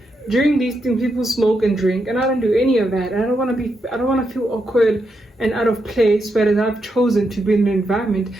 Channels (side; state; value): both; normal; correlation 0.83